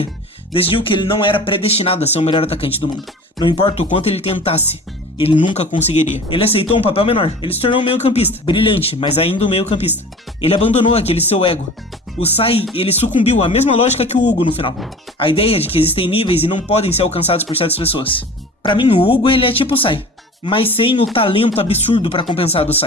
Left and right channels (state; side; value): normal; both; correlation 0.40